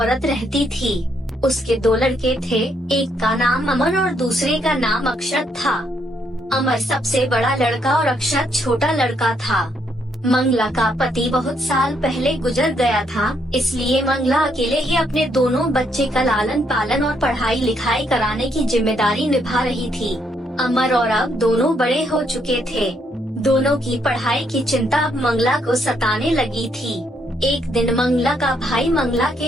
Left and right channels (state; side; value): normal; both; correlation 0.74